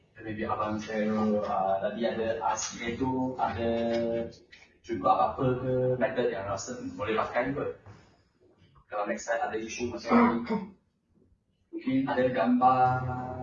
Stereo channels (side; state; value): both; identical; correlation 1.00